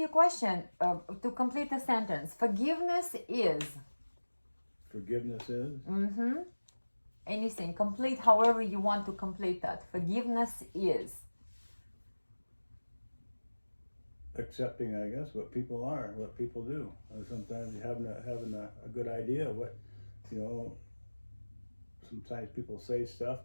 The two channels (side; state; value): both; inverted; correlation -1.00